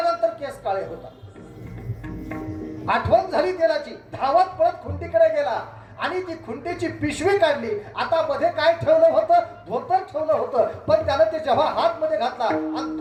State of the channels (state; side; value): identical; both; correlation 1.00